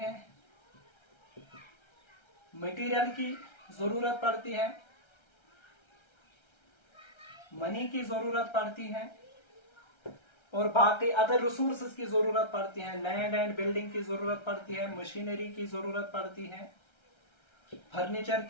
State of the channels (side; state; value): right; late; 1.3 ms